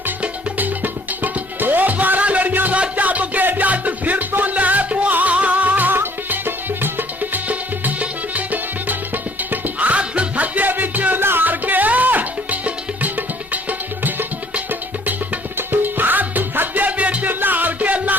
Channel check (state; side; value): normal; both; correlation 0.58